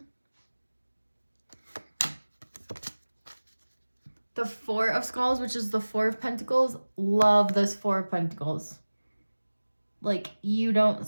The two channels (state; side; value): inverted; both; correlation -1.00